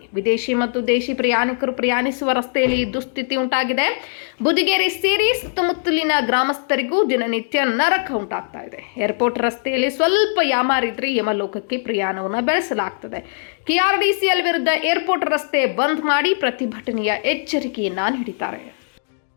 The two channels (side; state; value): right; silent; digital silence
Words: ವಿದೇಶಿ ಮತ್ತು ದೇಶಿ ಪ್ರಯಾಣಿಕರು ಪ್ರಯಾಣಿಸುವ ರಸ್ತೆಯಲ್ಲಿ ದುಸ್ಥಿತಿ ಉಂಟಾಗಿದೆ. ಬುದಿಗೇರಿ ಸೇರಿ ಸುತ್ತಮುತ್ತಲಿನ ಗ್ರಾಮಸ್ಥರಿಗೂ ದಿನನಿತ್ಯ ನರಕ ಉಂಟಾಗ್ತಾ ಇದೆ. ಏರ್ಪೋರ್ಟ್ ರಸ್ತೆಯಲ್ಲಿ ಸ್ವಲ್ಪ ಯಾಮಾರಿದ್ರೆ ಯಮಲೋಕಕ್ಕೆ ಪ್ರಯಾಣವನ್ನು ಬೆಳೆಸಲಾಗ್ತದೆ. ಕೆಆರ್ಡಿಸಿಎಲ್ ವಿರುದ್ಧ ಏರ್ಪೋರ್ಟ್ ರಸ್ತೆ ಬಂದ್ ಮಾಡಿ ಪ್ರತಿಭಟನೆಯ ಎಚ್ಚರಿಕೆಯನ್ನ ನೀಡಿದ್ದಾರೆ.